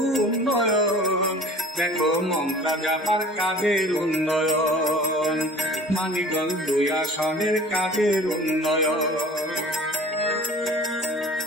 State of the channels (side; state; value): both; normal; correlation 0.45